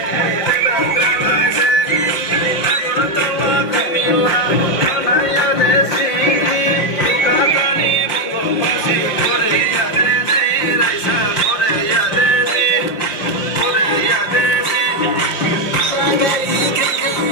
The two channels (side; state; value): right; late; 5.8 ms